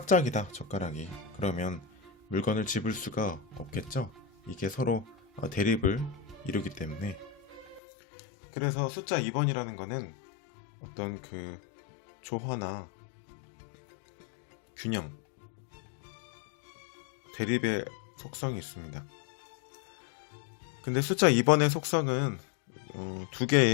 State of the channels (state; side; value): drops out; right; at 7.8 s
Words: 젓가락이. 그러면 물건을 집을 수가 없겠죠. 이게 서로 대립을 이루기 때문에. 그래서 숫자 2번이라는 거는 어떤 그 조화나 균형, 대립의 속성이 있습니다. 근데 숫자 2번의 속성은 두